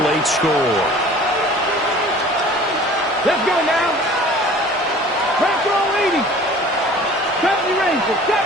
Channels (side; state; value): both; normal; correlation 0.46